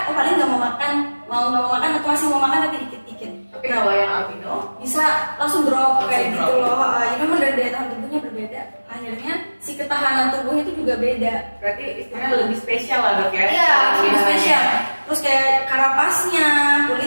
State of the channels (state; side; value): inverted; both; correlation -1.00